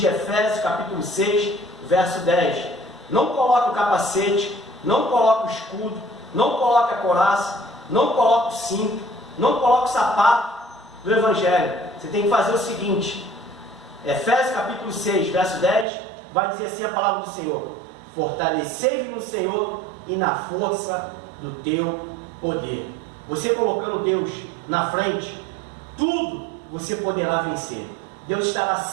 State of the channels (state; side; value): drops out; left; at 15.9 s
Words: Efésios, capítulo 6, verso 10. Não coloque o capacete, não coloque o escudo, não coloque a couraça, não coloque o cinto, não coloque o sapato do Evangelho. Você tem que fazer o seguinte: Efésios capítulo 6, verso 10, vai dizer assim a palavra do Senhor: fortalecei-vos no Senhor e na força do teu poder. Você colocando Deus na frente, tudo você poderá vencer. Deus estará